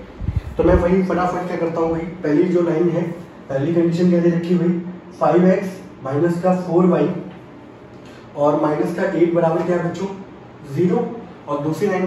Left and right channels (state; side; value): identical; both; correlation 1.00